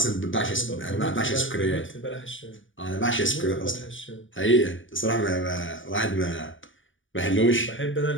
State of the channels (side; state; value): right; late; 0.56 ms